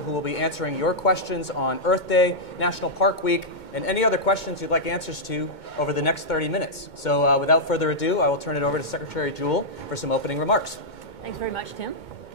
will be answering your questions on Earth Day, National Park Week, and any other questions you'd like answers to over the next 30 minutes. So without further ado, I will turn it over to Secretary Jewell for some opening remarks. Thanks very much, Tim.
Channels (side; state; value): right; late; 2.2 ms